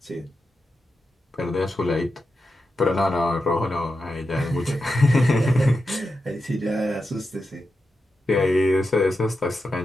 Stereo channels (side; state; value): both; normal; correlation 0.89